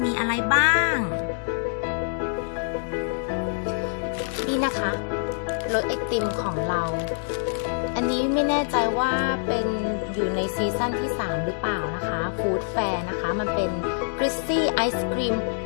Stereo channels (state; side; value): silent; right; digital silence